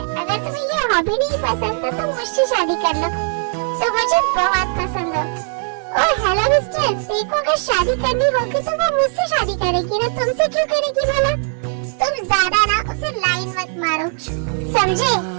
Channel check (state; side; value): silent; left; 56 dB below the other